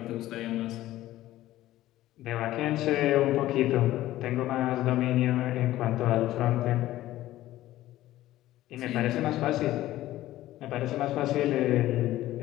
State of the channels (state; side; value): quieter; right; 15.1 dB